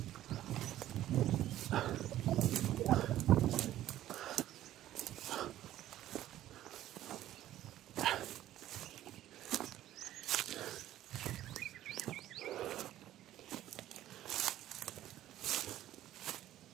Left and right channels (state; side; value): quieter; left; 13.3 dB